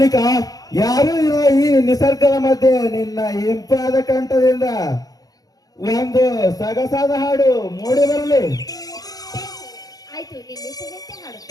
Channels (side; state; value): right; late; 0.17 ms